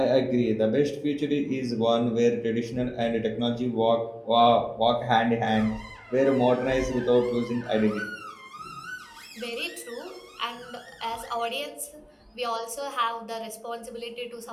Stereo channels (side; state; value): both; identical; correlation 1.00